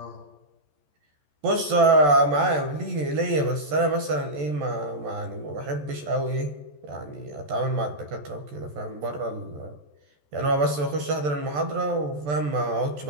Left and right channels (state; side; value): late; left; 14 ms